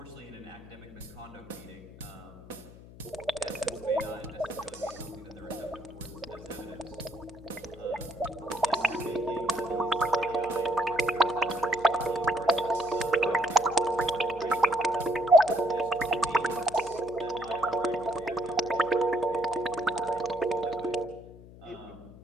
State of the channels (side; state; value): left; noise; hum, 18 dB below the sound